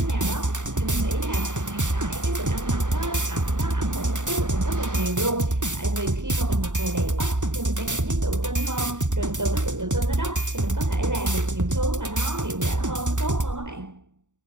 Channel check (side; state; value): left; late; 0.86 ms